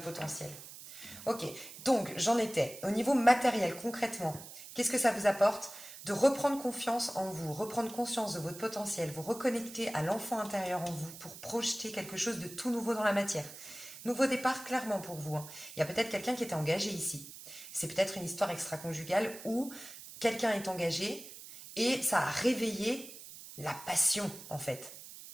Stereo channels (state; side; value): noise; right; hiss, 14 dB below the sound